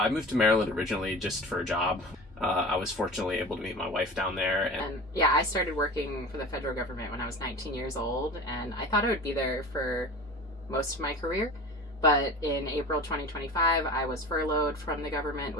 moved to Maryland originally just for a job. I was fortunately able to meet my wife down there. And yeah, I started working for the federal government when I was 19 years old, and I thought I would be there for most of my career. But in April 2025, I was furloughed from the government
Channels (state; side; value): normal; both; correlation 0.36